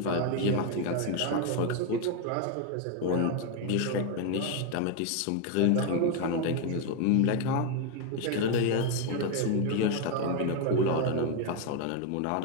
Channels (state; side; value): different; both; correlation 0.01